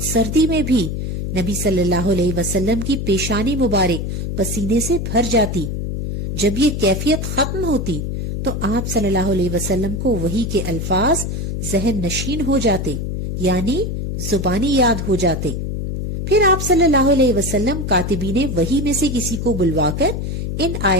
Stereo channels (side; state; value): left; noise; hum, 3 dB below the sound